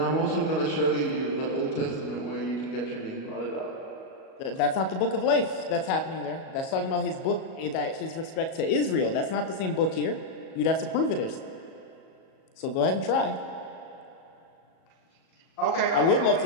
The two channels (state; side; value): late; right; 37 ms